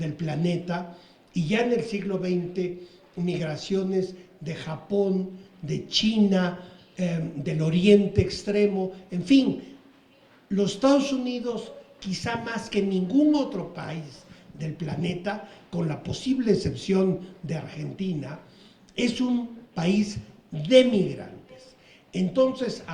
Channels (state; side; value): identical; both; correlation 1.00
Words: planeta, y ya en el siglo XX migraciones de Japón, de China, del Oriente Extremo, en fin, los Estados Unidos, quizá más que ningún otro país del planeta, con la posible excepción de Argentina, es un país de migrantes. Entonces,